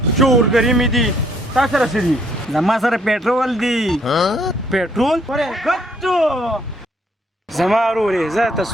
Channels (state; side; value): normal; both; correlation 0.67